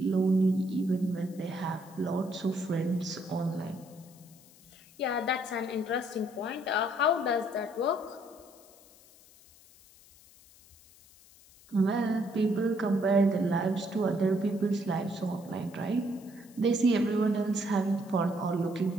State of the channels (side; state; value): left; noise; hiss, 25 dB below the sound